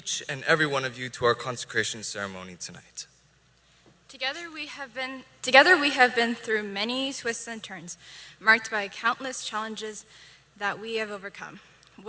and every one of you, to our consecration ceremony tonight. Together we have been through many twists and turns, marked by countless challenges that we have overcome,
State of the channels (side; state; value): both; identical; correlation 1.00